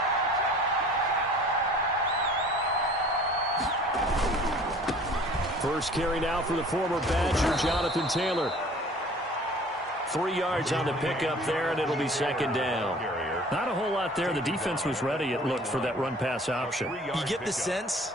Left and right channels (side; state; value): both; normal; correlation 0.49